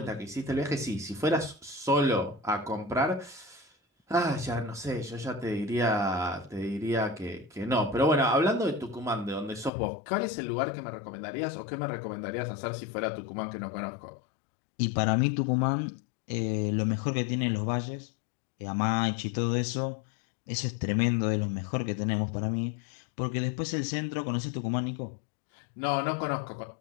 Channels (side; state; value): right; drops out; at 9.7 s